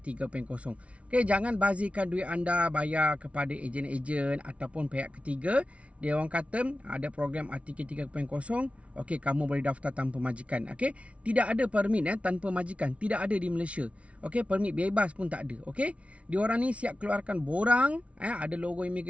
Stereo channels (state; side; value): late; left; 0.063 ms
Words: 3.0. Okey, jangan bazirkan duit anda bayar kepada ejen-ejen ataupun pihak ketiga. Dia orang kata ada program RTK 3.0. Okey, kamu boleh daftar tanpa majikan. Okey, tidak ada permit tanpa majikan. Tidak ada di Malaysia. Okey, permit bebas pun tak ada. Okey, diorang ni siap keluarkan borang, ada logo